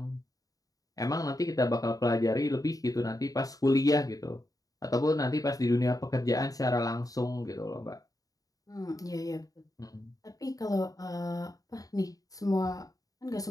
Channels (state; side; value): late; right; 0.17 ms